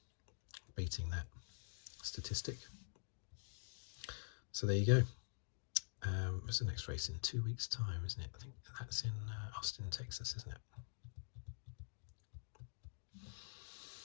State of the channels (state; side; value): silent; right; digital silence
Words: beating that statistic. So there you go. What's the next race? In 2 weeks' time, isn't it? I think that's in Austin, Texas, isn't it?